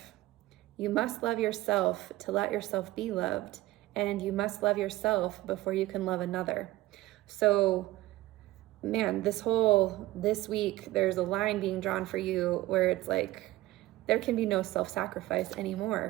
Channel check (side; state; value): left; quieter; 17.6 dB